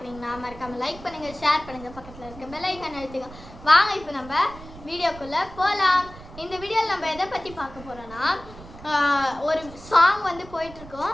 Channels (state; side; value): noise; right; rumble, 17 dB below the sound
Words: மறக்காமல் லைக் பண்ணுங்கள், ஷேர் பண்ணுங்கள், பக்கத்தில் இருக்க பெல் ஐக்கான் அழுத்துங்க. வாங்க இப்போ நம்ம வீடியோக்குள்ளே போகலாம். இந்த வீடியோவில் நம்ம எதை பற்றி பார்க்க போகிறோன்னா, ஒரு சாங் வந்து